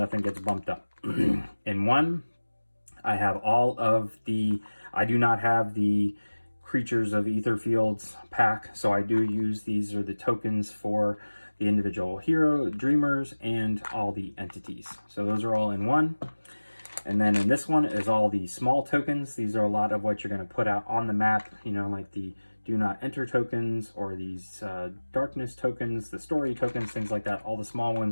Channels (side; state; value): both; inverted; correlation -1.00